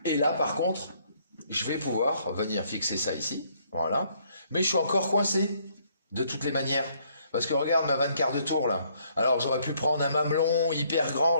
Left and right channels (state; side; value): inverted; both; correlation -0.68